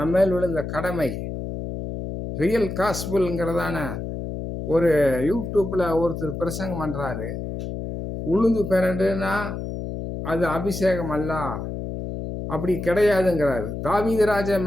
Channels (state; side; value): noise; left; hum, 6 dB below the sound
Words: விழுந்த கடமை. ரியல் காஸ்புல்ங்கிறதான ஒரு யூடியூப்ல ஒருத்தர் பிரசங்கம் பண்றாரு. உளுந்து பிறண்டுனா அது அபிஷேகம் அல்ல, அப்படி கிடையாதுங்கிறாரு. தாவீது ராஜா